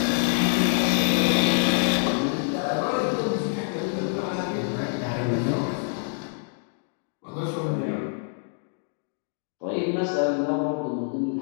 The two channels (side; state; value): right; silent; 61 dB below the other